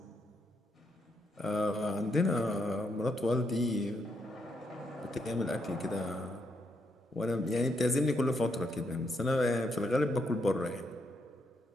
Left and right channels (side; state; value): both; normal; correlation 0.78